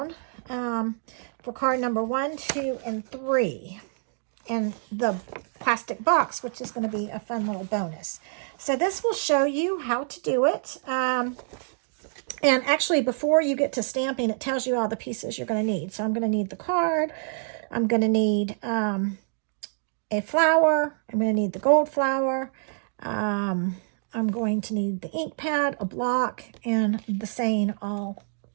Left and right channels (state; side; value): silent; left; digital silence